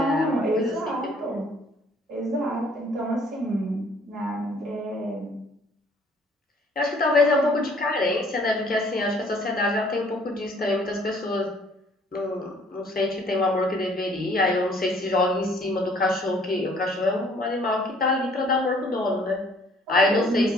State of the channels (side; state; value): both; normal; correlation 0.59